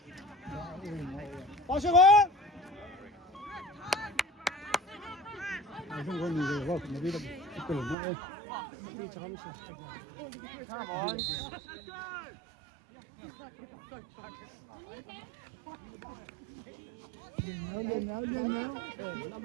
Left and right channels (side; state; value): left; drops out; at 8.0 s